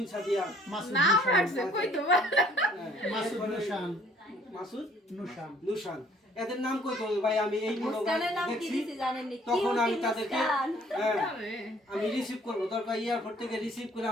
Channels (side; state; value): both; normal; correlation 0.59